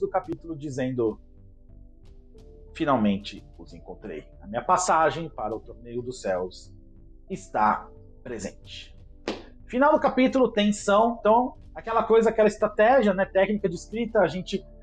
capítulo dizendo: finalmente os encontrei. A minha passagem para o Torneio dos Céus está presente. Final do capítulo, tensão. Então, aquela estratégia, né, técnica de escrita, a gente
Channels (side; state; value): both; identical; correlation 1.00